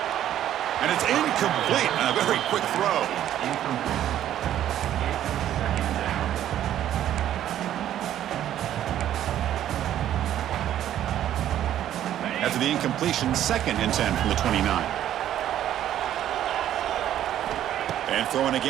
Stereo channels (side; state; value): left; quieter; 11.6 dB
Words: And it's incomplete on a very quick throw. After the incompletion, 2nd and 10 from the 29. And throwing